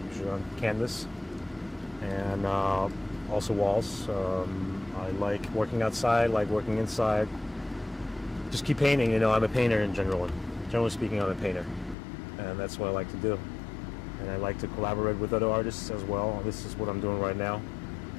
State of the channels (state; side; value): drops out; right; at 12.0 s